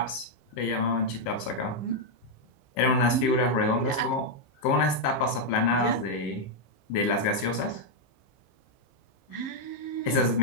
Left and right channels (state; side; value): late; right; 15 ms